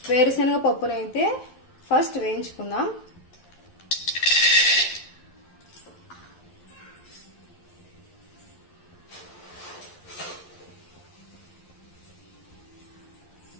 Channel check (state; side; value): late; right; 11 ms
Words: వేరుశనగ పప్పునైతే ఫస్ట్ వేయించుకుందాం.